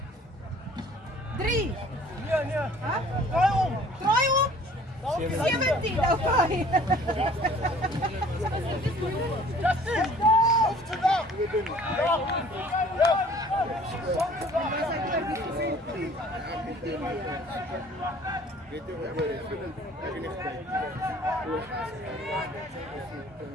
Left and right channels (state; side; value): normal; both; correlation 0.52